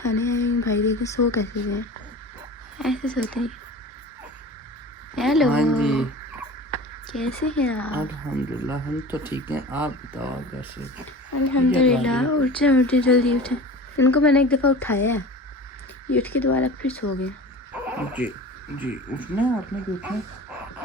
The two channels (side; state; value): both; normal; correlation 0.36